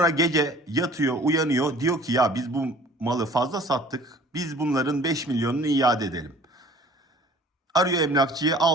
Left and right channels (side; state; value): both; normal; correlation 0.50